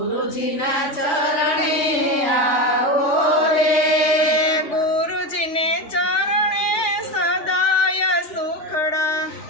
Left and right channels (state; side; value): late; right; 3.4 ms